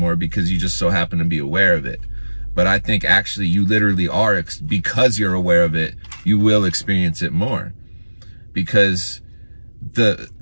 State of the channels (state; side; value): inverted; both; correlation -1.00